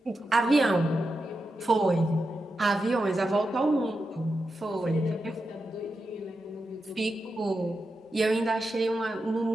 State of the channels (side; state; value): both; normal; correlation 0.89